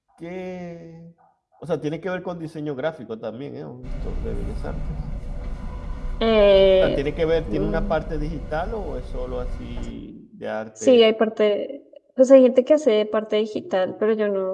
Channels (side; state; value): both; identical; correlation 1.00